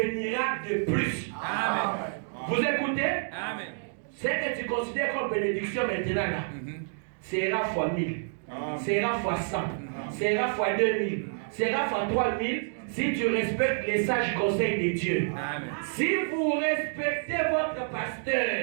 de plus. Amen. Vous écoutez? Amen. Ce que tu considères comme bénédiction maintenant là, sera fois 1000, sera fois 100, sera fois 2000, sera fois 3000 si tu respectes les sages conseils de Dieu. Amen. Si vous respectez votre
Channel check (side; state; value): left; silent; digital silence